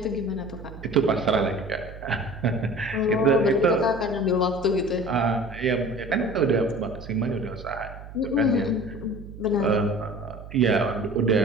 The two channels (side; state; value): right; noise; hum, 14 dB below the sound